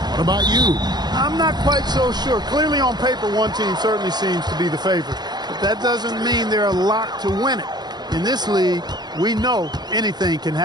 What about you? I'm not quite so sure. Clearly on paper, one team certainly seems to be the favorite. But that doesn't mean they're a lock to win it. In this league, we know anything can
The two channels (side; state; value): left; late; 0.20 ms